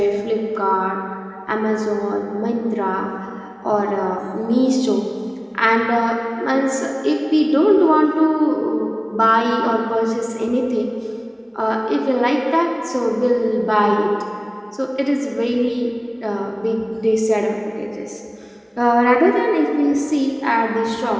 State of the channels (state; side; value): identical; both; correlation 1.00